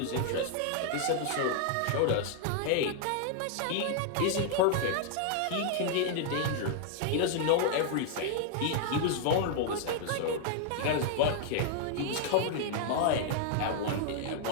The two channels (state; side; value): different; both; correlation 0.00